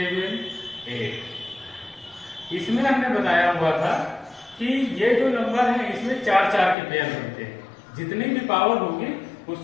8। इसमें हमने बताया हुआ था कि ये जो नंबर है इसमें 4-4 के पेयर बनते हैं, जितनी भी पावर होगी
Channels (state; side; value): drops out; right; at 6.8 s